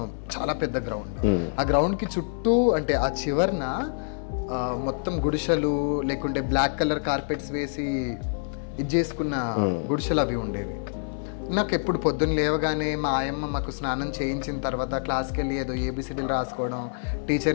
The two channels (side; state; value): right; silent; 61 dB below the other